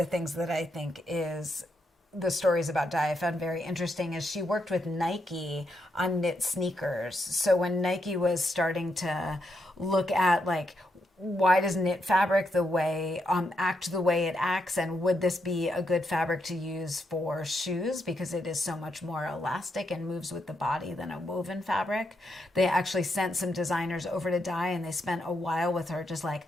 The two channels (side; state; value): both; normal; correlation 0.81